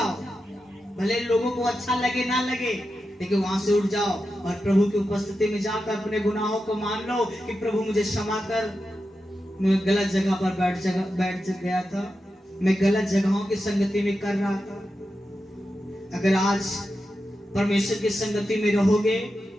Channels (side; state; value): both; normal; correlation 0.90